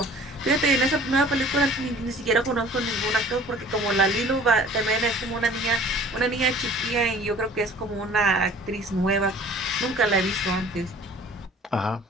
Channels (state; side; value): normal; both; correlation 0.49